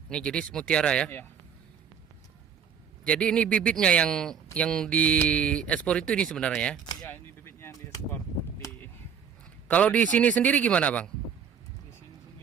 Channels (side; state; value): left; quieter; 7.6 dB